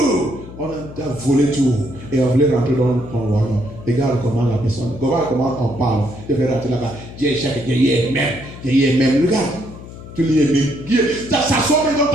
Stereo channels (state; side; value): noise; left; hum, 15 dB below the sound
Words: On a volé tout. Et on voulait rentrer dans le royaume. Regarde comment la personne, comment on parle. Je vais rentrer là-bas. Dieu est même. Regarde. Tu lis même. Ça sort même dans